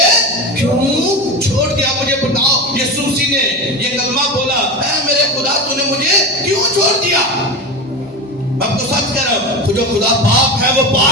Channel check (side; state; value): left; noise; hum, 28 dB below the sound